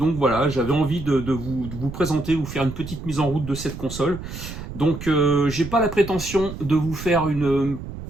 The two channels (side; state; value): right; noise; rumble, 10 dB below the sound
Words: voilà, j'avais envie de vous présenter, vous faire une petite mise en route de cette console. Donc j'ai pas la prétention de vous faire une